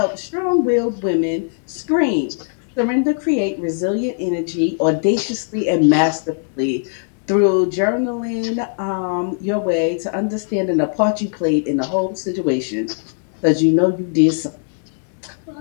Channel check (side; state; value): right; silent; 66 dB below the other